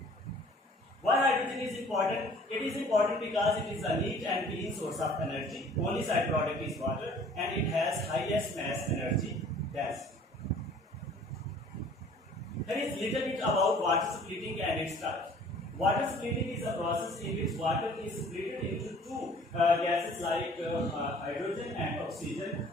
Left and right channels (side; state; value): both; normal; correlation 0.52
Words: Why hydrogen is important? It is important because it is a neat and clean source of energy. Only side product is water and it has highest mass energy. Yes. There is little bit about water splitting and its types. Water splitting is a process in which water is split into two gases like hydrogen and oxygen